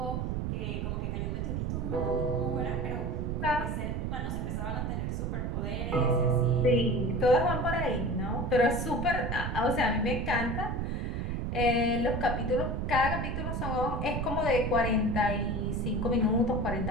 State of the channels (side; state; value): right; noise; rumble, 1 dB below the sound